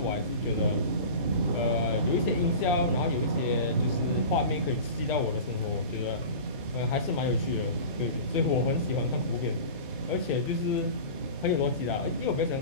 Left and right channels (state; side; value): inverted; both; correlation -0.35